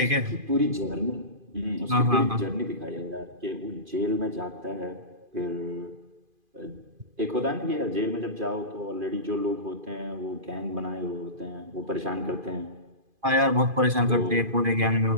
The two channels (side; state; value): left; late; 2.5 ms